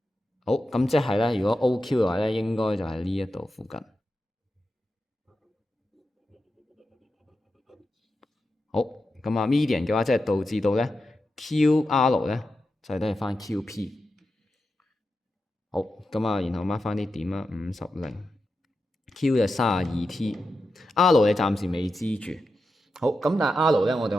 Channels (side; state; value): both; normal; correlation 0.89